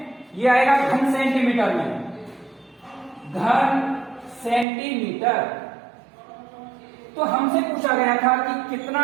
ये आएगा घन सेंटीमीटर में, घन सेंटीमीटर। तो हमसे पूछा गया था कि कितना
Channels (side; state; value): left; drops out; at 4.7 s